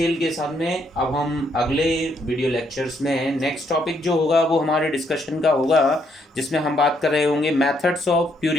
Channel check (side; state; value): both; normal; correlation 0.73